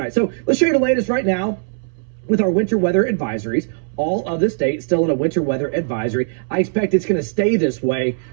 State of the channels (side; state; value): left; silent; 66 dB below the other